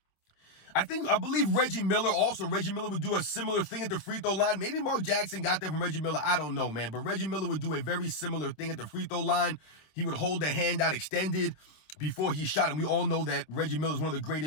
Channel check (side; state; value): right; late; 26 ms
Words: I believe Reggie Miller would do a similar thing at the free throw line. Maybe Mark Jackson got that from Reggie Miller. I don't know, man. But Reggie Miller would do a very similar thing at the free throw line. He would hold the hand out extended before he shot. And we all know that Reggie Miller is one of the